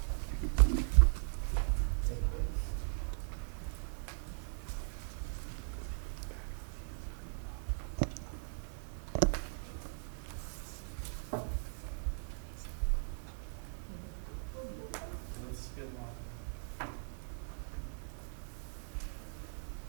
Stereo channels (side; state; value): left; silent; 52 dB below the other